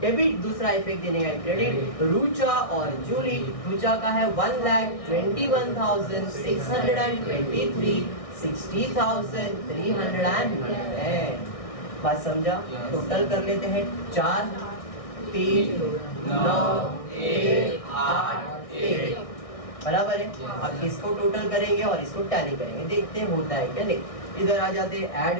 दूसरा इफेक्ट देने का क्रेडिट रुचा और जूली। रुचा का है 1,21,623 60,311। बात समझा। टोटल कर लेते हैं 4 3 9 1 8 1 बराबर है। अब इसको टोटल करेंगे और इसको टैली करेंगे, देखते हैं होता है क्या नहीं। इधर आ जाते हैं,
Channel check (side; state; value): right; late; 1.6 ms